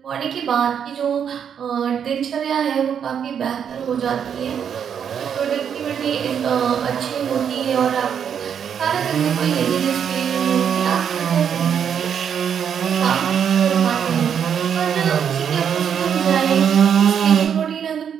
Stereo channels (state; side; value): quieter; left; 8.0 dB